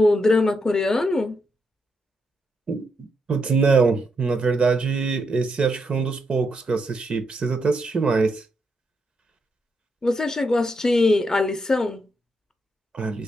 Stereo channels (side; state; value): both; normal; correlation 0.80